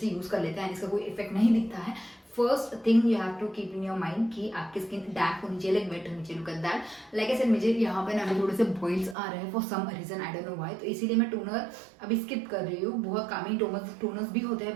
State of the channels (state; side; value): drops out; left; at 9.2 s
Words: यूज़ कर लेते हैं, इसका कोई इफेक्ट नहीं दिखता है। First thing you have to keep in your mind कि आपकी स्किन डैम्प होनी चाहिए, लाइक वेट होनी चाहिए। लुक एट दैट, लाइक ऐसे मुझे यहाँ पे ना अभी थोड़े से बॉइल्स आ रहे हैं for some reason, I don't know why, तो इसीलिए मैं टोनर अभी स्किप कर रही हूँ। बहुत कामी टोनर्स भी होते हैं,